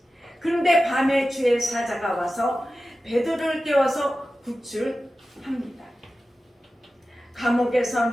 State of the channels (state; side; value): normal; both; correlation 0.94